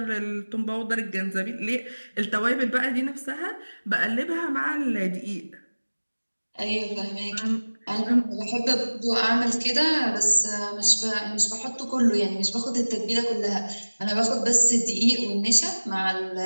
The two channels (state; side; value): inverted; both; correlation -1.00